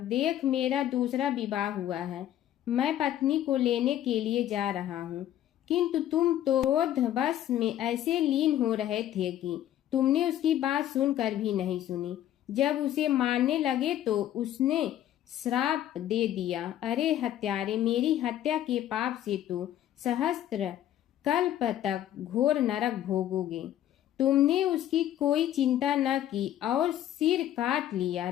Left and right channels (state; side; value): quieter; right; 12.0 dB